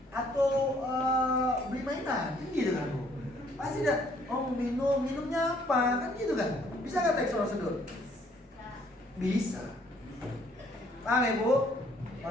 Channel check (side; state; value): both; normal; correlation 0.63